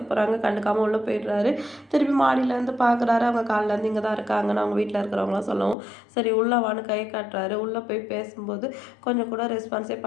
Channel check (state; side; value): drops out; right; at 5.8 s